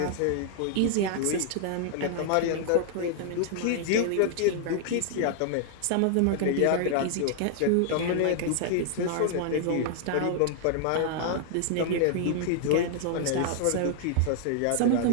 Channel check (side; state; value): both; different; correlation -0.01